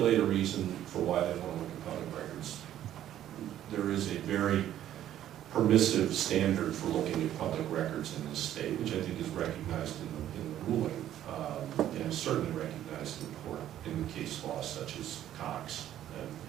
a reason for why they want to look at public records. There is a very permissive standard for looking at public records in this state, which I think is recognized in the ruling, and certainly recognized in the case law, such as Cox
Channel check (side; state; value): left; quieter; 11.8 dB